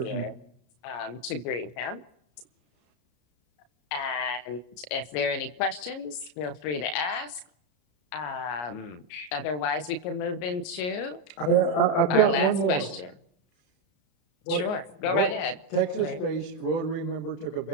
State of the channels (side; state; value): right; late; 33 ms